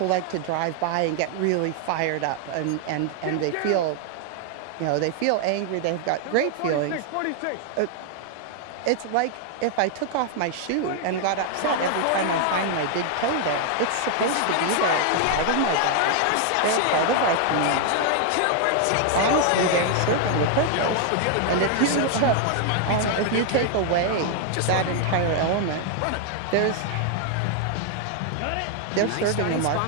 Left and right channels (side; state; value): both; different; correlation 0.00